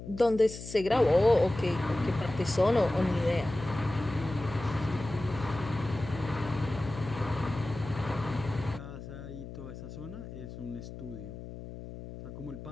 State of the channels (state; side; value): noise; left; hum, 11 dB below the sound